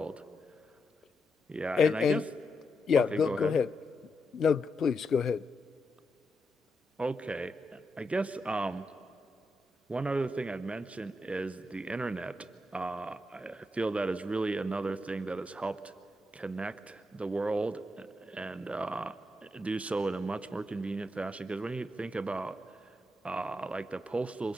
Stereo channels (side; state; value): both; normal; correlation 0.84